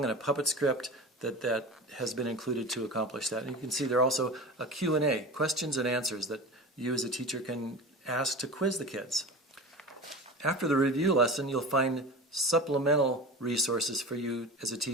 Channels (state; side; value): normal; both; correlation 0.31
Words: and a puppet script that has been included to accomplish that. And you can see there are also a Q&A, questions and answers, that you as a teacher can ask to quiz the kids. After the review lesson, you'll find supplemental resources for you as a